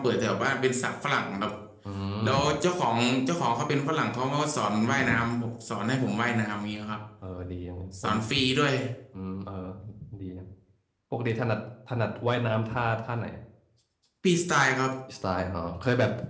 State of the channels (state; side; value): identical; both; correlation 1.00